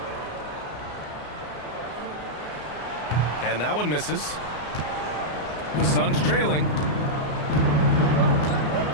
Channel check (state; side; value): late; right; 33 ms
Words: And that one misses. The Suns trailing.